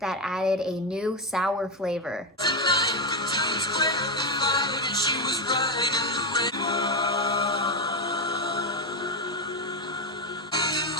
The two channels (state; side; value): normal; both; correlation 0.10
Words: added a new sour flavor.